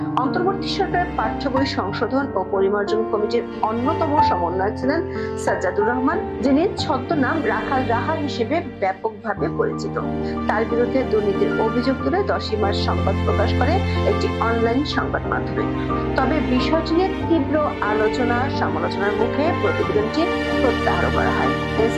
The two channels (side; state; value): both; identical; correlation 1.00